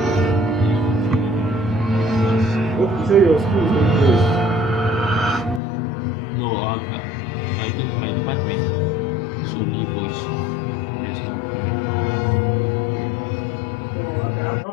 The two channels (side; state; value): right; drops out; at 5.6 s